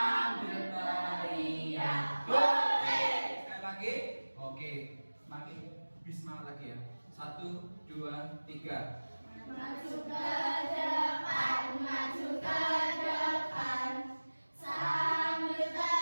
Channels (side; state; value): both; inverted; correlation -1.00